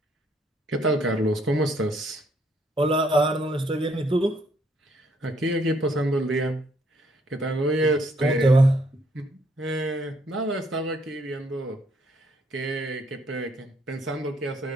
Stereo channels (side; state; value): both; normal; correlation 0.68